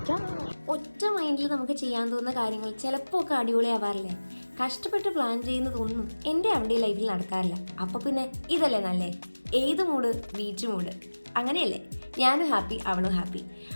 ഒറ്റ മൈൻഡിൽ നമുക്ക് ചെയ്യാൻ തോന്നുന്ന കാര്യങ്ങൾ ചിലപ്പോൾ ഒക്കെ അടിപൊളിയാവാറില്ലേ? കഷ്ടപ്പെട്ട് പ്ലാൻ ചെയ്യുന്നതൊന്നും എൻ്റെ അവിടെ ലൈഫിൽ നടക്കാറില്ല. അപ്പോൾ പിന്നെ ഇതല്ലേ നല്ലേ? ഏത് മൂഡ്? Beach mood. അങ്ങനെയല്ലേ? ഞാനും ഹാപ്പി, അവളും ഹാപ്പി.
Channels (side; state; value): both; inverted; correlation -1.00